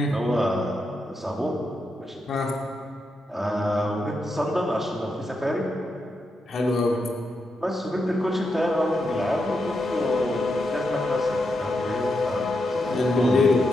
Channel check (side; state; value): both; normal; correlation 0.84